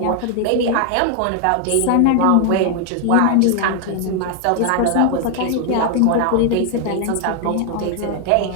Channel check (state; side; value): different; both; correlation 0.00